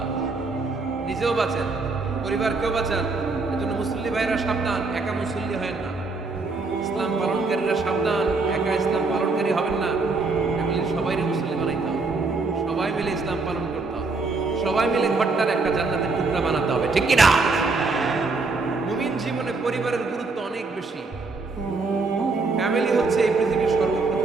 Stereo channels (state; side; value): quieter; left; 3.8 dB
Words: নিজেও বাঁচেন, পরিবারকেও বাঁচান। এজন্য মুসল্লি ভাইরা সাবধান, একা মুসল্লি হয় না। ইসলাম পালনকারীরা সাবধান, একা ইসলাম পালনকারী হবেন না। ফ্যামিলির সবাইকে মুসল্লি বানাইতে হবে, সবাই মিলে ইসলাম পালন করতে হবে, সবাই মিলে ঘরটার একটা জান্নাতের টুকরা বানাতে হবে, ঠিক কি না? মুমিন জীবনে পরিবারের গুরুত্ব অনেক বেশি। ফ্যামিলি হচ্ছে এই পৃথিবীর